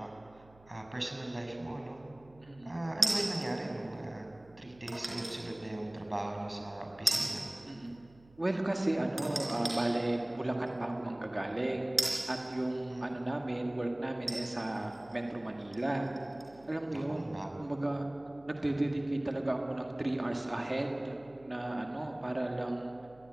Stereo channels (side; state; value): right; noise; hum, 26 dB below the sound